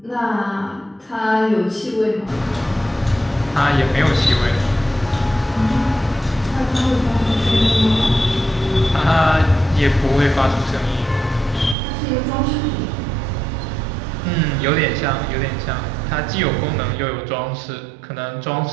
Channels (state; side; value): drops out; left; at 11.8 s